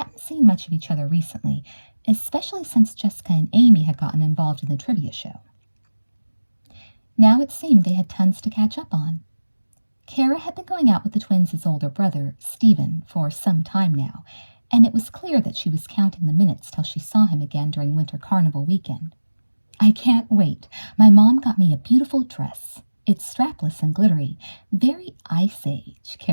seen much of each other recently, especially since Jessica and Amy had gotten involved in the trivia show. Now it seemed they had tons to catch up on. Kara had been going out with the twins' older brother, Stephen, for some time now, and it was clear that she was counting the minutes till she saw him again during Winter Carnival weekend. I can't wait. My mom got me a beautiful dress. It's strapless and glittery. Very Ice Age,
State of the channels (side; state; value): both; inverted; correlation -1.00